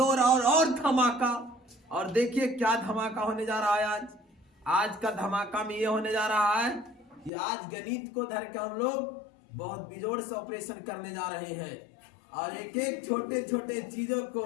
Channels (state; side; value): drops out; right; at 7.3 s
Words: और धमाका। और देखिए क्या धमाका होने जा रहा है। आज का धमाका में ये होने जा रहा है कि आज गणित को धर के हम लोग बहुत बेजोड़ से ऑपरेशन करने जा रहे हैं और एक एक छोटे छोटे चीजों को